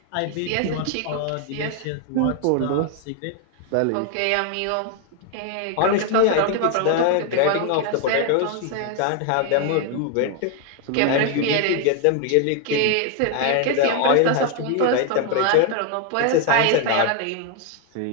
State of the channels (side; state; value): both; different; correlation 0.01